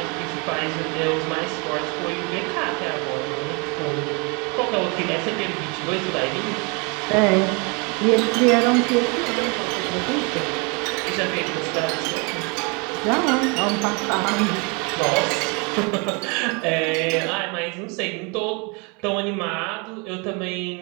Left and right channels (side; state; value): left; quieter; 31.6 dB